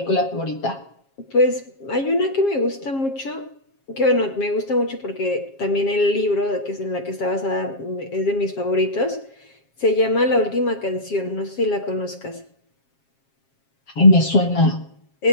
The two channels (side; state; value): right; late; 7.4 ms